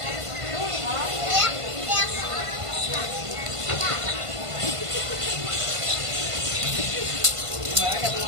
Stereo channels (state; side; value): late; left; 1.5 ms